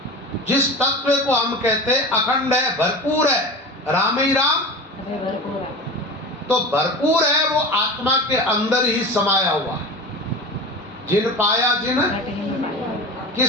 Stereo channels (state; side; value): normal; both; correlation 0.31